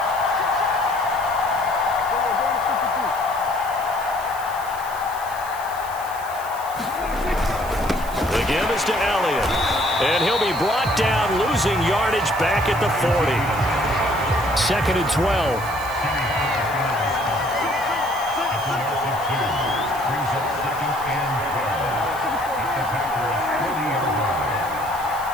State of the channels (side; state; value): right; noise; hiss, 16 dB below the sound